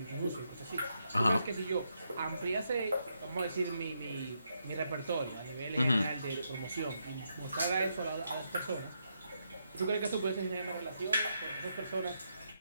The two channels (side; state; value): both; inverted; correlation -0.81